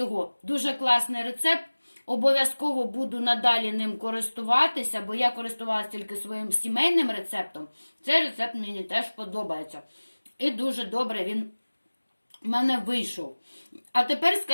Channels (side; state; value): both; inverted; correlation -1.00